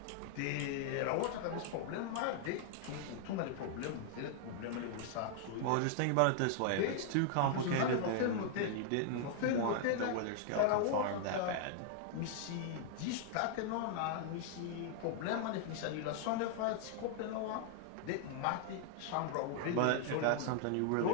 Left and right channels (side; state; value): both; different; correlation 0.00